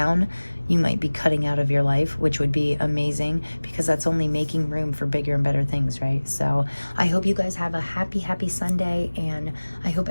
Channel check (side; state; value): both; inverted; correlation -1.00